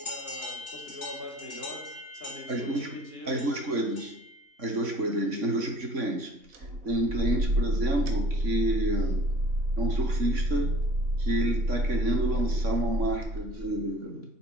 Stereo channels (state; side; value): late; left; 3.6 ms